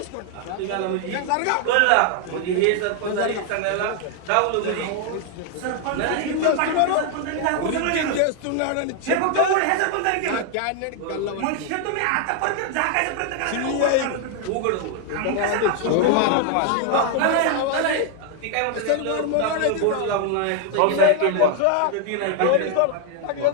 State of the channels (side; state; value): both; different; correlation 0.00